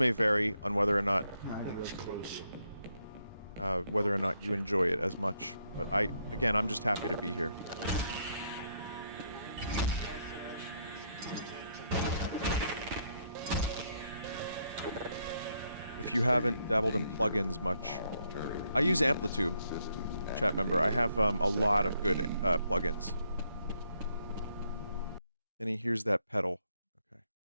vary on whether or not you enjoy it as much. But again, I'm just happy to be here. If you haven't dabbled in plugins much, I use Amplitude, chat member. I have a lot of good plugins. And here's that pedal. Okay.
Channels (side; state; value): both; inverted; correlation -0.74